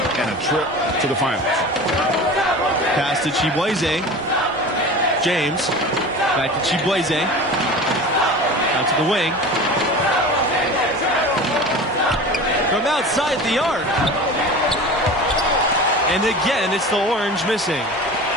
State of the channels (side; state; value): both; normal; correlation 0.35